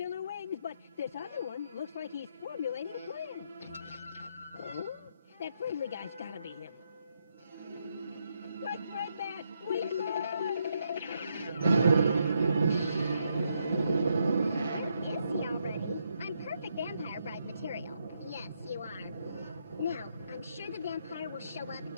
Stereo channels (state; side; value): inverted; both; correlation -0.78